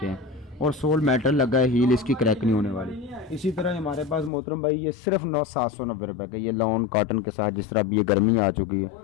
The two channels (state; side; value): drops out; right; at 4.3 s